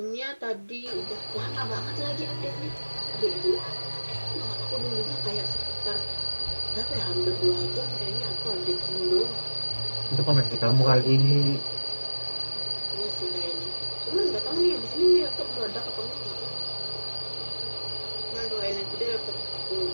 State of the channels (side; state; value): both; inverted; correlation -1.00